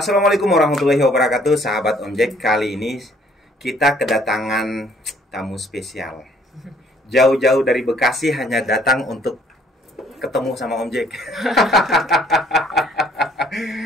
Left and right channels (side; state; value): both; normal; correlation 0.61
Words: warahmatullahi wabarakatuh, sahabat Om Jack. Kali ini kita kedatangan tamu spesial. Jauh-jauh dari Bekasi hanya datang untuk ketemu sama Om Jack.